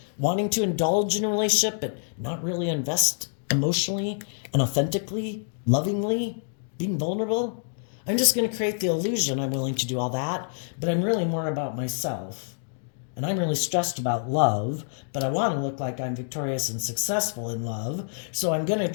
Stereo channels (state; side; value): silent; right; digital silence